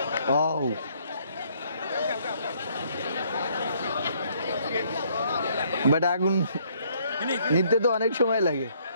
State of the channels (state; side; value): inverted; both; correlation -0.66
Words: ও বাট আগুন নিতে তো অনেক সময় লাগে।